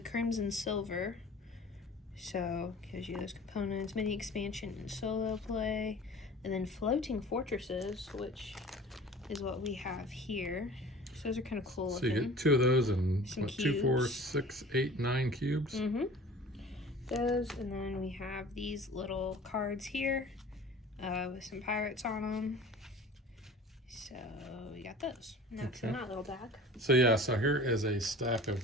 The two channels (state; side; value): normal; both; correlation 0.43